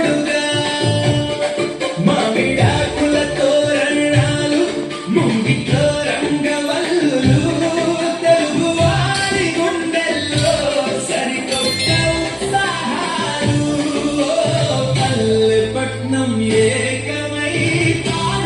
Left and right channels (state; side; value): identical; both; correlation 1.00